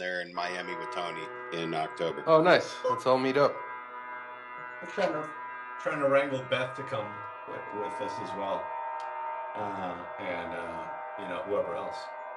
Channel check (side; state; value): both; identical; correlation 1.00